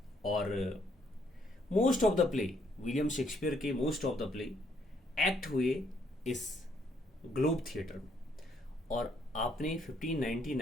और most of the play, William Shakespeare के most of the play act हुए इस ग्लोब थिएटर में। और आपने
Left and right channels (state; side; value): normal; both; correlation 0.70